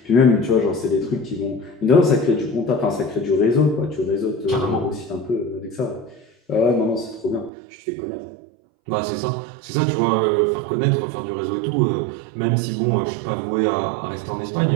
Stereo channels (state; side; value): drops out; left; at 7.5 s